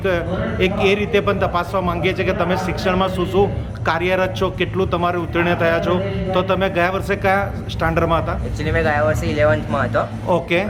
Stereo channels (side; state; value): both; identical; correlation 1.00